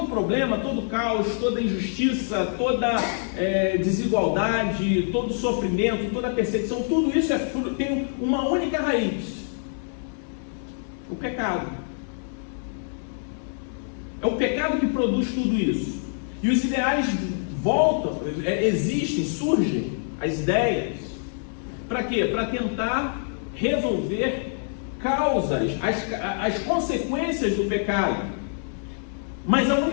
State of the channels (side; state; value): right; silent; digital silence